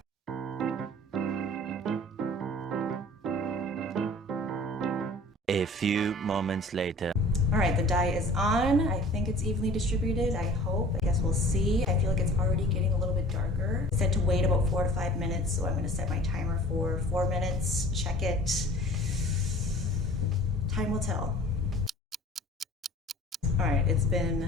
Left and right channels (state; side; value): normal; both; correlation 0.47